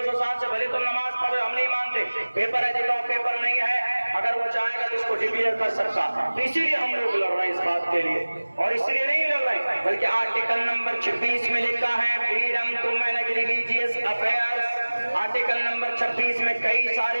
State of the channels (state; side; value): inverted; both; correlation -1.00